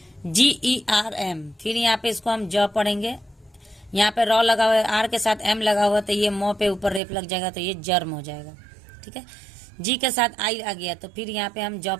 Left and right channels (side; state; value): left; drops out; at 7.0 s